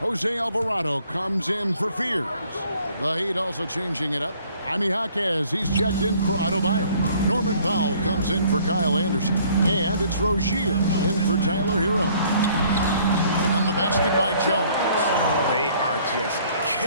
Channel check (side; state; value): both; inverted; correlation -0.59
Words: Alvarado comes in for Fears. The Heat also changing it up. Jaime Jaquez, he's checked in for Adebayo. Norman Powell comes in for Kyle Anderson. And it's Rozier in for Tyler Hero. And the basket by Jones. They are just